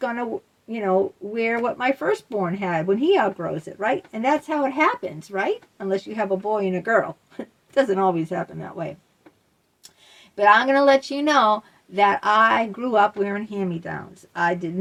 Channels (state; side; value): identical; both; correlation 1.00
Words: wear what my firstborn had when he outgrows it, right? And that's how it happens, right? Unless you have a boy and a girl. It doesn't always happen that way. But I'm going to let you know that I grew up wearing hand-me-downs. I